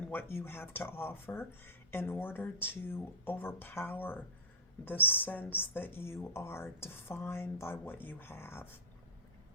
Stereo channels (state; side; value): normal; both; correlation -0.14